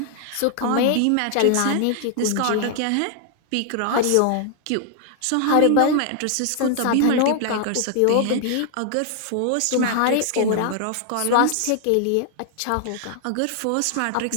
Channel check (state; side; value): different; both; correlation 0.00